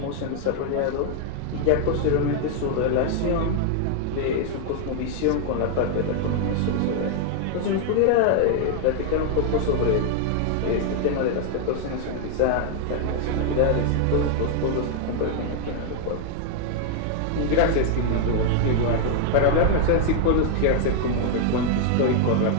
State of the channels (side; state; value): both; different; correlation 0.00